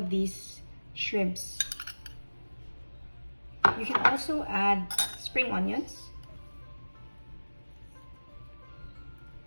these shrimps. You can also add spring onions.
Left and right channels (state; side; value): inverted; both; correlation -1.00